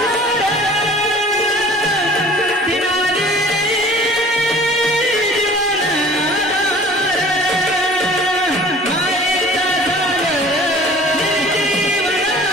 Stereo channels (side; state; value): both; normal; correlation 0.47